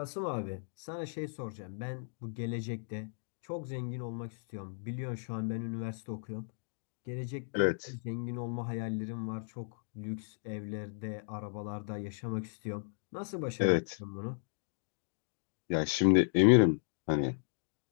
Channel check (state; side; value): silent; right; digital silence